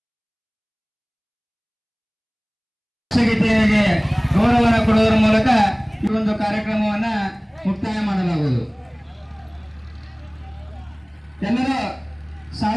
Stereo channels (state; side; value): identical; both; correlation 1.00